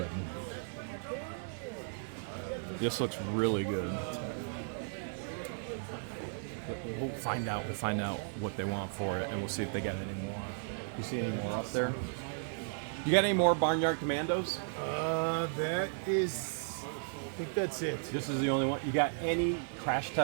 This looks really good. But we'll find out what they want for it, and we'll see if they got any more. You see any more up there? You got any more Barnyard Commandos? That is, I think that's it. This is the only one. You got any crash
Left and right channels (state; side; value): silent; left; digital silence